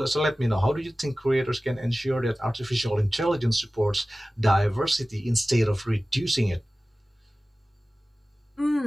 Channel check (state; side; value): normal; both; correlation 0.96